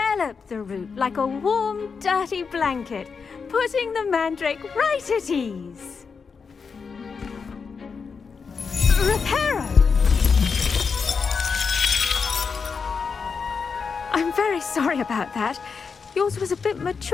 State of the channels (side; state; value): right; quieter; 5.5 dB